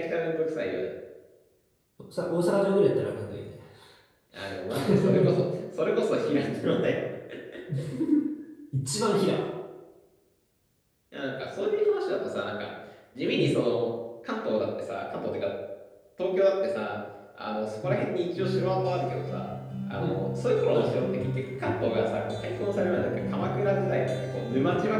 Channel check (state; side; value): identical; both; correlation 1.00